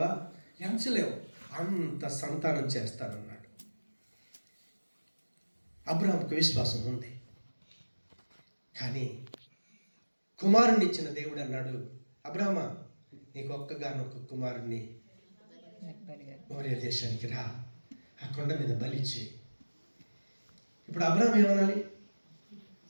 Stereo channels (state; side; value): inverted; both; correlation -1.00